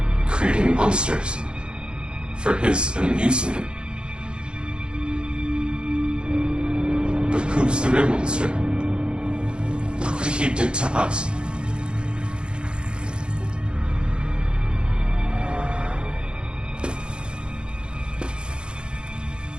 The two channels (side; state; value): left; late; 0.053 ms